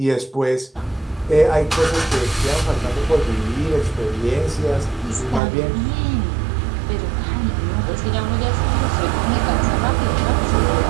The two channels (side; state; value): left; drops out; at 5.4 s